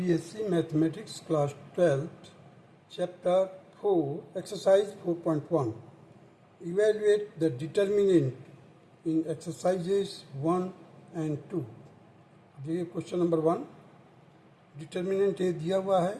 Mathematics Class 12th, Chapter 4, Exercise 4.1. Evaluate the determinant in exercises 1 and 2. देखिए question number 1, determinant ए दिया हुआ है,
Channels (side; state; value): both; identical; correlation 1.00